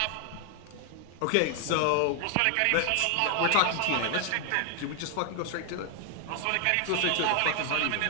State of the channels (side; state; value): both; different; correlation 0.00